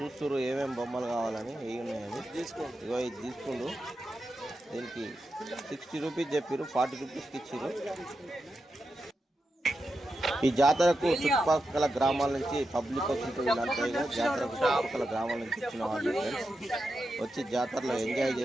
ఏమేమి బొమ్మలు కావాలని, ఏమి ఉన్నాయని. ఇది తీసుకుండు. దీనికి 60 రూపీస్ చెప్పారు, 40 రూపీస్కి ఇచ్చారు. ఈ జాతరకు చుట్టుపక్కల గ్రామాల నుంచి పబ్లిక్ వస్తుంటుంది. జాతరకు చుట్టుపక్కల గ్రామాల నుంచి ఇచ్చిన వాళ్ళు వచ్చి జాతరలో ఎంజాయ్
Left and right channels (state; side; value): normal; both; correlation 0.89